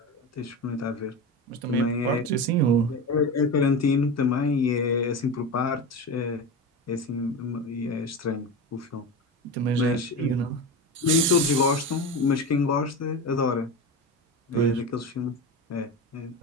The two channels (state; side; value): normal; both; correlation 0.23